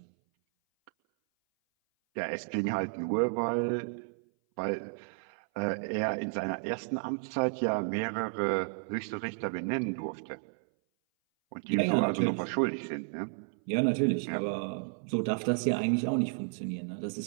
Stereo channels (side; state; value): left; silent; 56 dB below the other